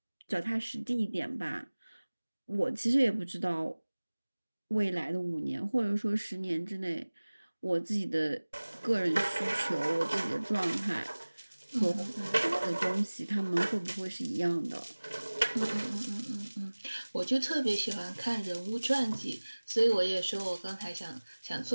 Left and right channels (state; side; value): inverted; both; correlation -1.00